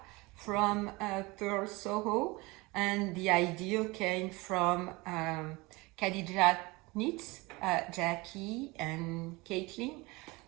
from Pearl Soho, and the idea came from Khadija Knits, Jackie and Caitlin,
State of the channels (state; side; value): quieter; left; 23.7 dB